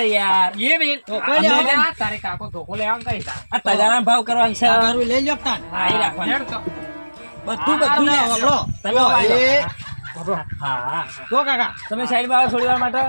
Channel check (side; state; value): both; inverted; correlation -1.00